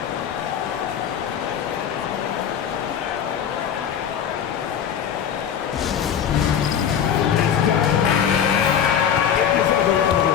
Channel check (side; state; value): right; quieter; 8.5 dB